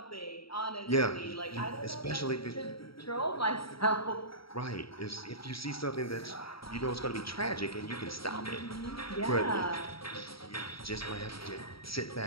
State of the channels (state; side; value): late; right; 0.75 ms